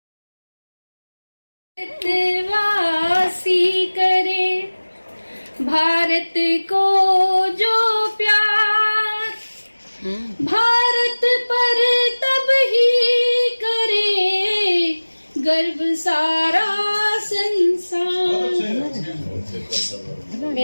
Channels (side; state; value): both; inverted; correlation -1.00